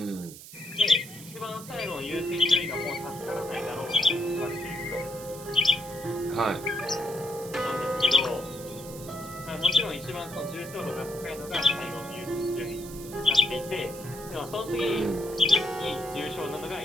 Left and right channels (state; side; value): noise; right; hiss, 15 dB below the sound